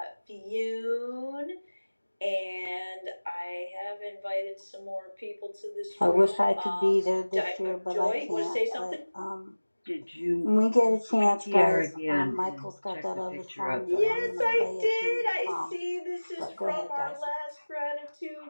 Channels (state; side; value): inverted; both; correlation -1.00